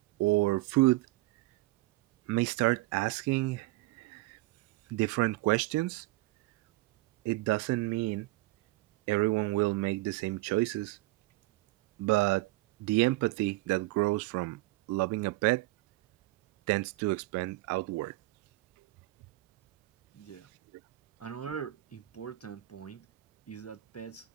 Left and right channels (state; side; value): quieter; left; 19.4 dB